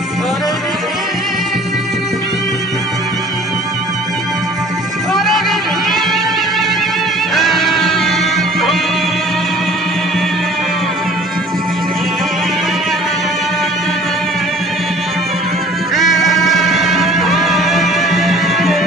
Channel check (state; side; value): normal; both; correlation 0.49